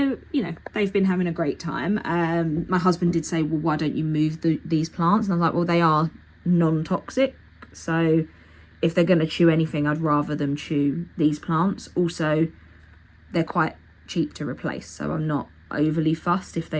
you know, they've been having a great time. My husband did say, well, why don't you move these plants? And I was like, well, they are non-toxic, so if they're going to chew anything, I'd rather them chew these plants. Also, they're quite cheap to replace, so I'm not overly fussed if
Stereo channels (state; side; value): identical; both; correlation 1.00